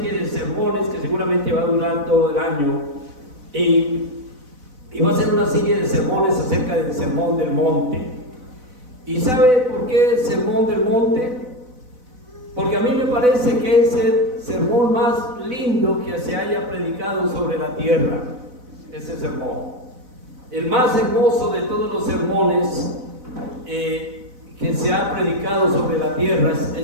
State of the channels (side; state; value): left; late; 4.0 ms